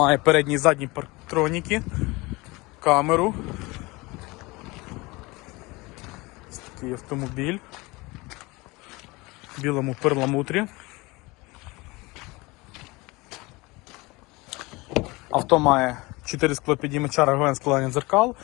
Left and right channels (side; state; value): right; quieter; 23.5 dB